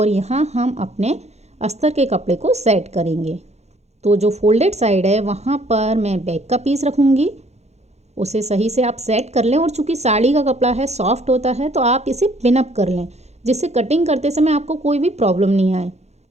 यहाँ हम अपने अस्तर के कपड़े को सेट करेंगे। तो जो फोल्डेड साइड है वहाँ पर मैं बैक का पीस रखूँगी, उसे सही से आप सेट कर लें। और चूँकि साड़ी का कपड़ा है, सॉफ्ट होता है, तो आप इसे पिनअप कर लें जिससे कटिंग करते समय आपको कोई भी प्रॉब्लम नहीं आए।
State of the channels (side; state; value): left; late; 0.32 ms